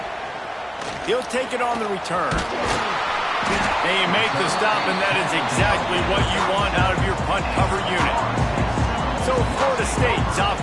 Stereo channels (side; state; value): both; identical; correlation 1.00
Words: He'll take it on the return. They make the stop, and that is exactly what you want out of your punt cover unit. So Florida State's